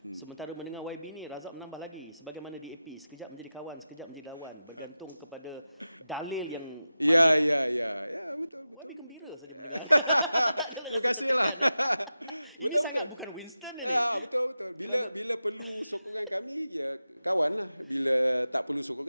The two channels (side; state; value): both; inverted; correlation -0.92